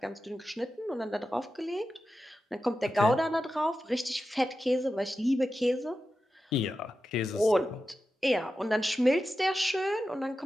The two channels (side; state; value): both; normal; correlation 0.92